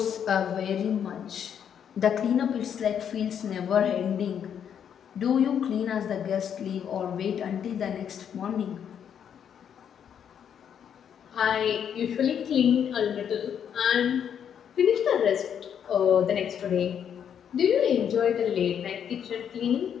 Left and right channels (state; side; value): quieter; right; 8.5 dB